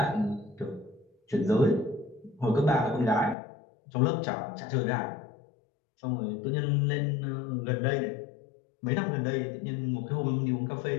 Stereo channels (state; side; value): drops out; right; at 3.4 s